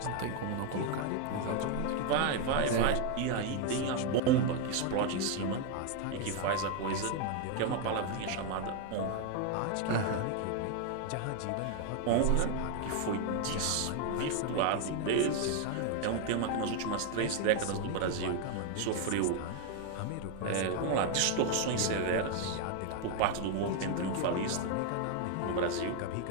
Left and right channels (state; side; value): different; both; correlation 0.01